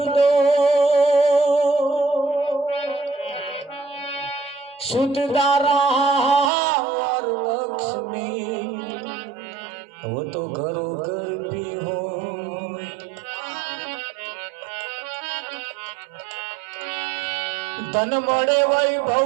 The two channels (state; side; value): drops out; left; at 6.5 s